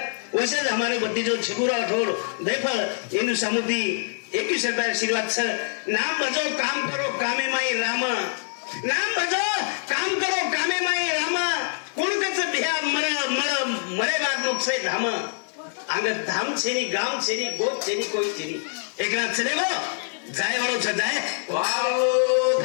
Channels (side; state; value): right; silent; digital silence